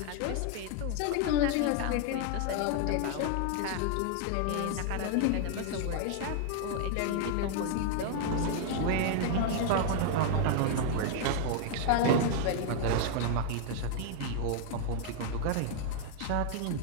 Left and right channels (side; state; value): both; different; correlation 0.00